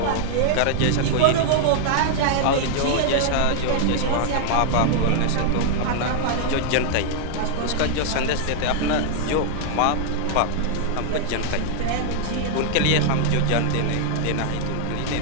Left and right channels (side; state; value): both; different; correlation -0.01